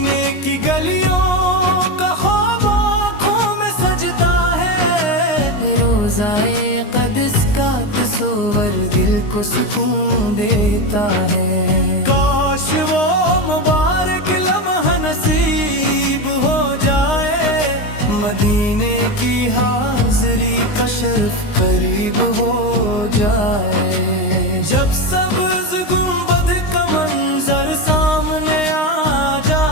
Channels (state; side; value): late; right; 19 ms